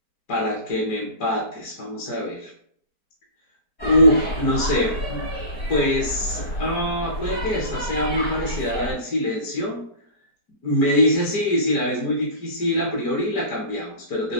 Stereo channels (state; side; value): late; right; 4.5 ms